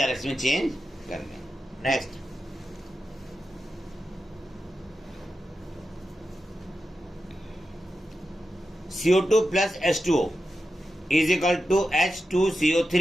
में change कर दें। Next, CO2 plus H2O is equal to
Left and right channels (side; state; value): both; normal; correlation 0.90